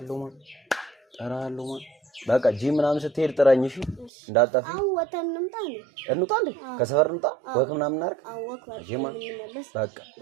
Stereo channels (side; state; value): left; drops out; at 4.1 s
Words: ማን በቃ ጂም ምናምን ስትሄድ ጥራኝ እሺ እንዳጠፋ አው ወተን እንምጣ እንዴ ከሰፈር እንምጣ ወክ ምናምን እናድርግ ወክ ጂም በቃ